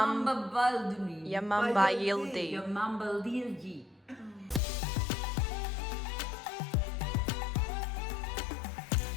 Balduni. Yamamba Yildi. Yamamba Lilji.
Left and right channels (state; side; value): drops out; right; at 4.6 s